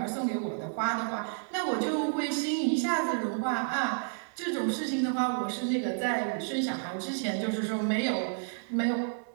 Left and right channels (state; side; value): silent; left; 57 dB below the other